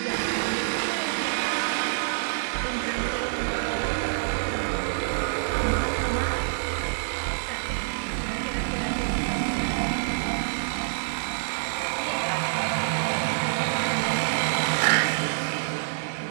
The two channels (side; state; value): left; silent; digital silence